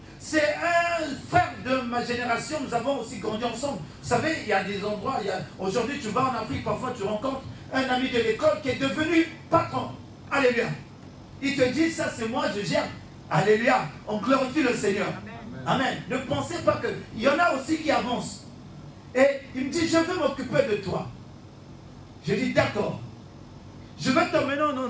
C'est un frère de ma génération, nous avons aussi grandi ensemble. Vous savez, il y a des endroits, aujourd'hui tu vas en Afrique, parfois tu rencontres un ami de l'école qui est devenu patron. Alléluia. Il te dit, ça c'est moi, je gère. Alléluia. On glorifie le Seigneur. Amen. Amen. Ne pensez pas que... Il y en a aussi qui avancent. Et il me dit, je veux m'occuper de toi. Je dis, d'accord. Je vais t'emmener à un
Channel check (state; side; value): identical; both; correlation 1.00